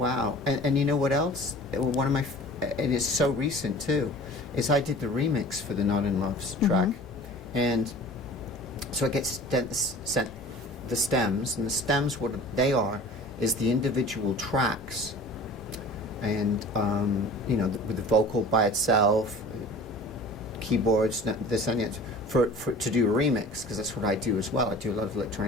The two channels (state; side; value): normal; both; correlation 0.42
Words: And you know what else? One of my, and it's so recent too, is I did the remix for the Not in Love's track, and so it gets sent the stems, and the stems, what they are is the individual tracks, and you know, with the vocal by itself, keyboards, this and that, for to do a remix, because that's what I do as well. I do a lot of